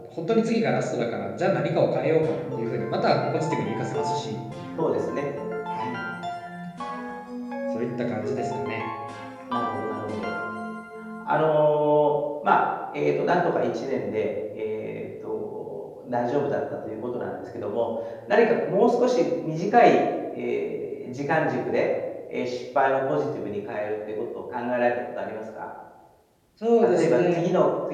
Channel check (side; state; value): both; identical; correlation 1.00